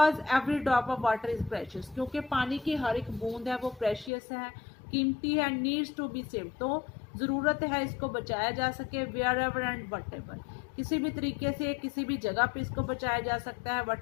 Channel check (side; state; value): right; drops out; at 4.1 s